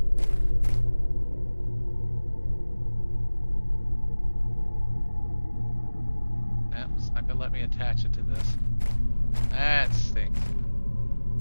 It's not gonna let me attach it to this. That stinks.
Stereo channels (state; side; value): inverted; both; correlation -1.00